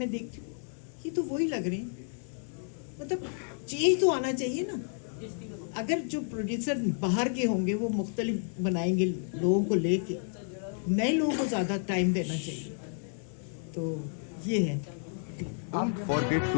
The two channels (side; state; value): right; silent; 57 dB below the other